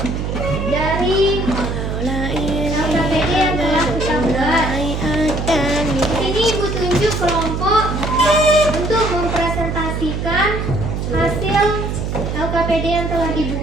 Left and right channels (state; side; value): noise; right; hum, 3 dB below the sound